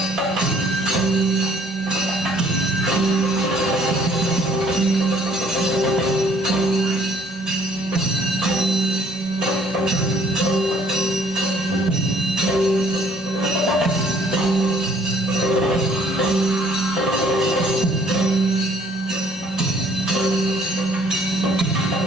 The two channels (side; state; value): both; normal; correlation 0.59